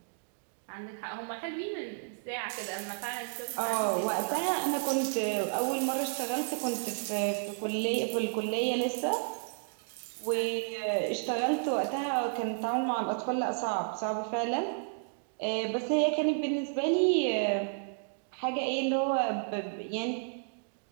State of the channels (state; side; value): silent; left; digital silence